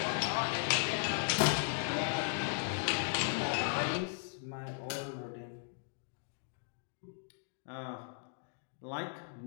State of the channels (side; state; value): right; silent; digital silence